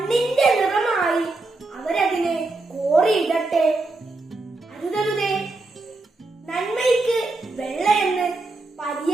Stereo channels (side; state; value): left; quieter; 3.3 dB